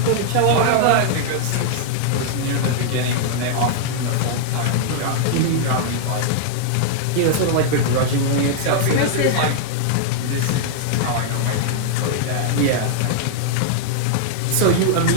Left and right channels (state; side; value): different; both; correlation -0.01